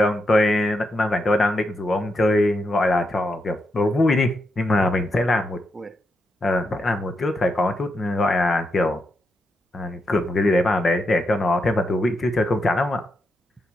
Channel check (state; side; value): normal; both; correlation 0.83